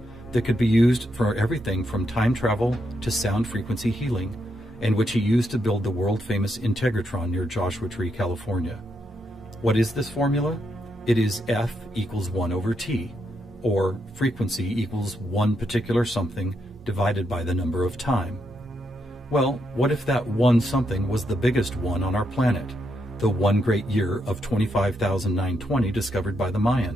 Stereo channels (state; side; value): normal; both; correlation 0.80